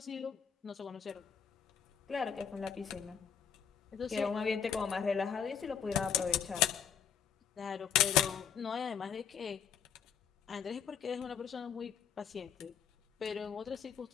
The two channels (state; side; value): quieter; right; 7.8 dB